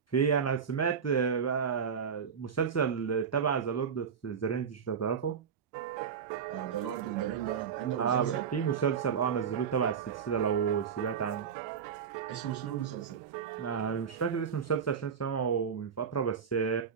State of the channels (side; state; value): left; quieter; 7.1 dB